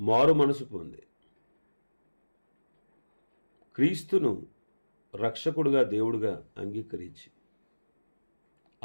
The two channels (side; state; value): both; inverted; correlation -1.00